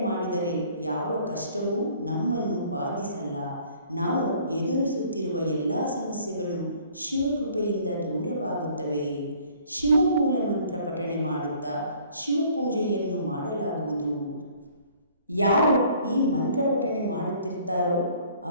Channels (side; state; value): both; inverted; correlation -0.56